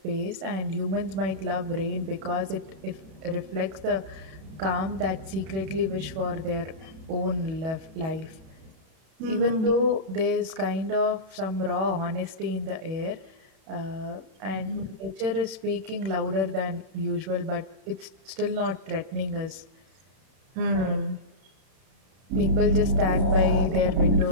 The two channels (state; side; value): late; left; 31 ms